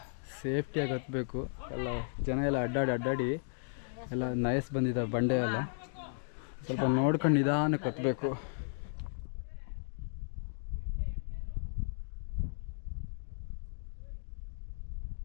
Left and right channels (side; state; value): right; silent; digital silence